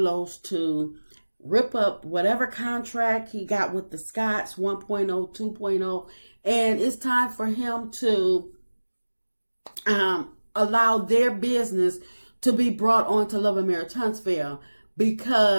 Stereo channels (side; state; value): both; inverted; correlation -1.00